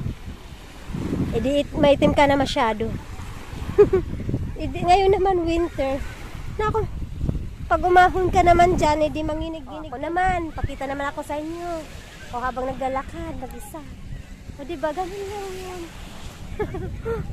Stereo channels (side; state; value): both; identical; correlation 1.00